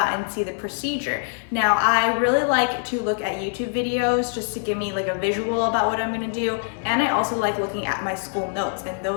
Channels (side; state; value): right; silent; 63 dB below the other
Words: and see the procedure. Now, I really like to look at YouTube videos just to give me like a visual about what I'm gonna do, and I also like looking at my school notes, and